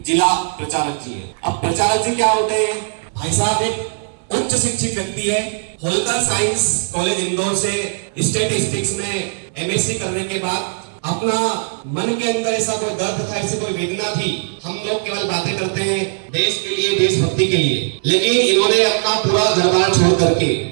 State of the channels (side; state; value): left; silent; digital silence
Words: जिला प्रचारक जी है। अब प्रचारक जी क्या होते हैं? भाई साहब एक उच्च शिक्षित व्यक्ति है। होलकर साइंस कॉलेज इंदौर से स्टैटिस्टिक्स में एमएससी करने के बाद अपना मन के अंदर ऐसा कोई दर्द था, ऐसी कोई वेदना थी। हम लोग केवल बातें करते हैं देश के लिए, देशभक्ति के लिए, लेकिन इन्होंने अपना पूरा घर-बार छोड़ करके